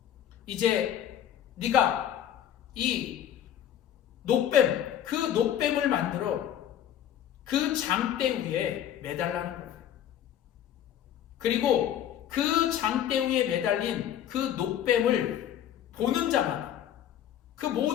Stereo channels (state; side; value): quieter; right; 10.5 dB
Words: 이제 네가 이 놋뱀, 그 놋뱀을 만들어 그 장대 위에 매달라는 거예요. 그리고 그 장대 위에 매달린 그 놋뱀을 보는 자마다, 그